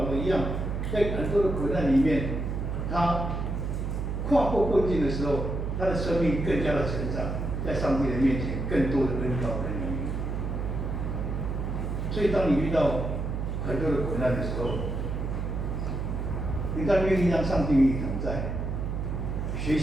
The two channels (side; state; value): right; noise; hum, 2 dB below the sound